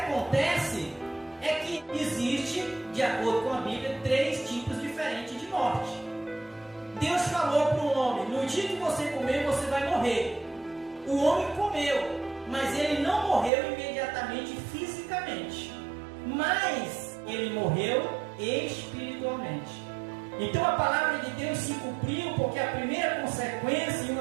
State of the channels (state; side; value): drops out; left; at 13.5 s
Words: é que existe, de acordo com a Bíblia, 3 tipos diferentes de morte. Deus falou para o homem: no dia que você comer, você vai morrer. O homem comeu, mas ele não morreu imediatamente fisicamente, mas ele morreu espiritualmente. Então a palavra de Deus se cumpriu, porque a primeira consequência e